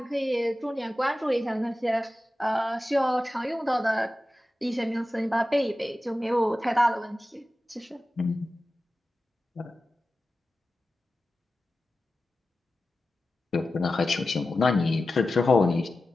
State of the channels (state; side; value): normal; both; correlation 0.94